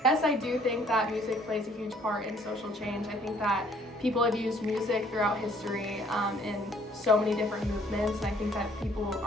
Yes, I do think that music plays a huge part in social change. I think that people have used music throughout history in so many different movements, and I think that people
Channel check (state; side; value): normal; both; correlation 0.60